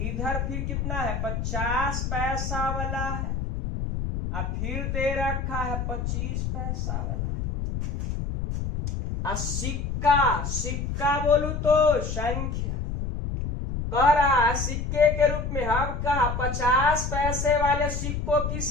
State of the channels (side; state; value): left; noise; rumble, 3 dB below the sound